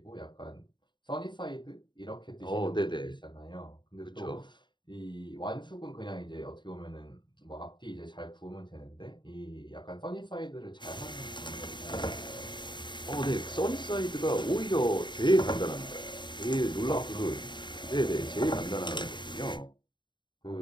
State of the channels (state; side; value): late; right; 0.22 ms